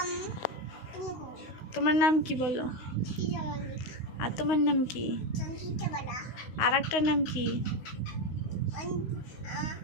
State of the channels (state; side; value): late; right; 16 ms